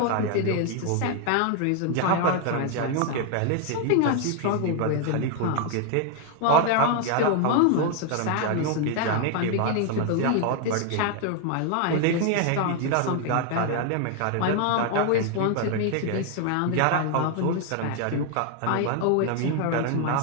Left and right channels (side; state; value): both; different; correlation 0.01